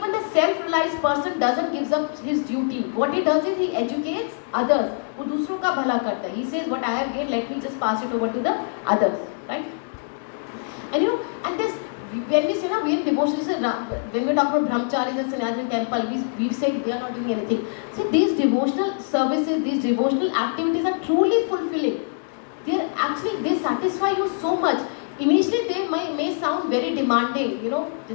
the self-realized person doesn't give up his duty. What he does is he educates others. वो दूसरों का भला करता है. He says what I have gained, let me just pass it over to the others, right? And you know, and this when we say we are devotional, when we talk about brahmacharis and sannyasis in temple, we say they are not doing anything. See, these devotional services, these devotional activities are truly fulfilling. They satisfy you so much. Initially they may sound very demanding, you know,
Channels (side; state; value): right; silent; digital silence